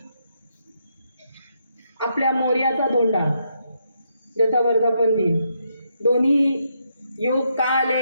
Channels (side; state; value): both; inverted; correlation -0.78